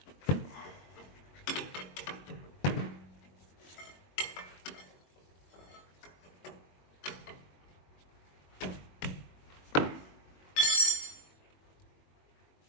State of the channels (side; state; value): right; late; 22 ms